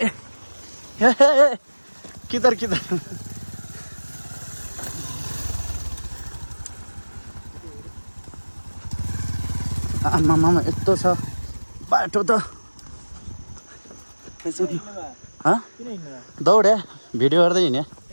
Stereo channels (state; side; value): inverted; both; correlation -1.00